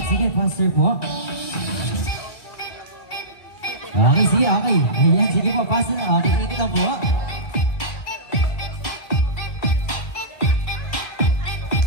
Sige, faster po. Okay, sige, okay. Ayan, sige po, faster na. Okay, ikot lang po.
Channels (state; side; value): late; right; 2.5 ms